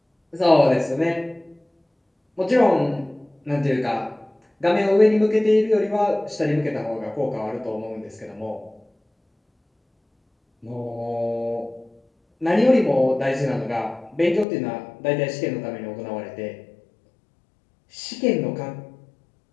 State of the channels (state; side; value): drops out; right; at 14.5 s